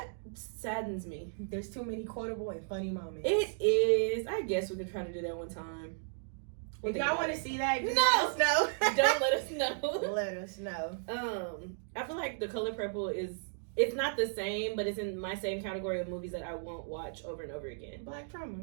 saddens me. There's too many quotable and funny moments. It is. I guess we could try to do that one time. If y'all want to see that, just No! let us know. Don't let us know. Let us know. I feel like the color purple it's not the same, but it's in my same category of movies that I won't watch over and over again. Black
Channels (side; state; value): left; silent; digital silence